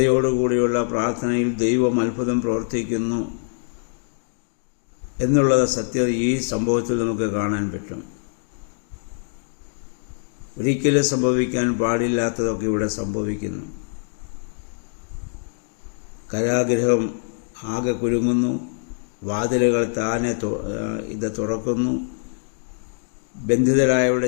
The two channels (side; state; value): right; silent; digital silence